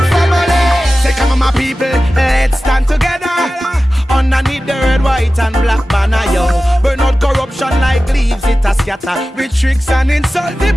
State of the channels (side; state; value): both; normal; correlation 0.95